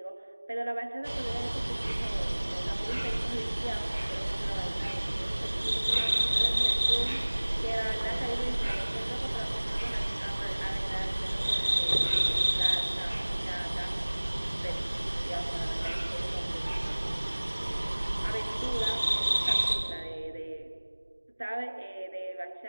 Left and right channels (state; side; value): inverted; both; correlation -1.00